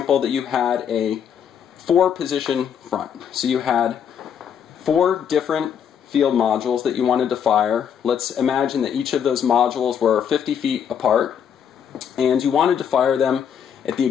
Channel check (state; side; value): quieter; right; 8.2 dB